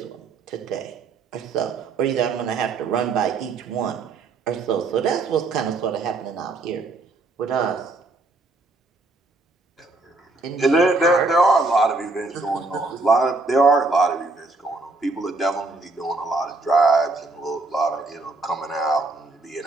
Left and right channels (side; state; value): left; quieter; 3.4 dB